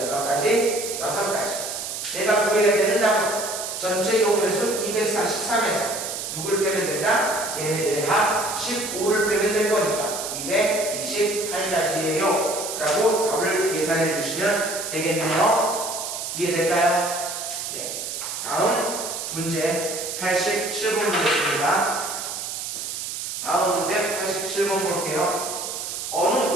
몇 가지? 6가지. 내가 구해야 되는 답은 전체 경우의 수 243에서 누굴 빼면 된다? 얘네들의 합 15를 빼면 될 거니까 228가지예요 라고 답을 계산해 주시면 되겠네요. 이해될까요? 네. 다음 문제 87번 보겠습니다. 다음 문제 87번 볼게요. 어느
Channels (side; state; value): right; noise; hiss, 5 dB below the sound